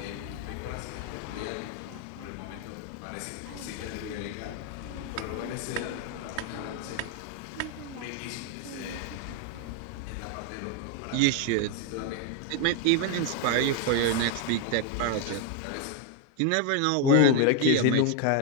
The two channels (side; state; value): both; different; correlation 0.01